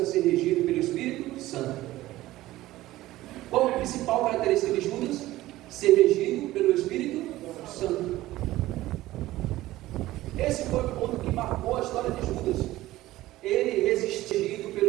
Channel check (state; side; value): quieter; left; 16.3 dB